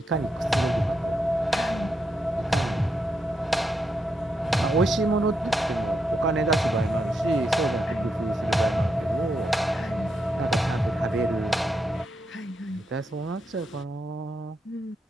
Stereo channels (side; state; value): both; normal; correlation 0.82